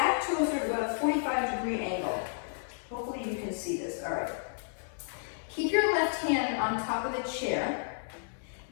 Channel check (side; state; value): right; silent; 57 dB below the other